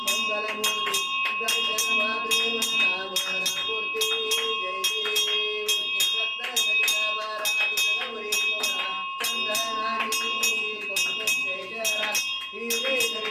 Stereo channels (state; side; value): identical; both; correlation 1.00